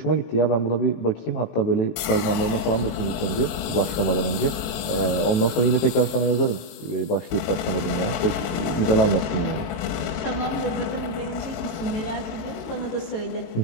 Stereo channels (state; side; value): late; right; 18 ms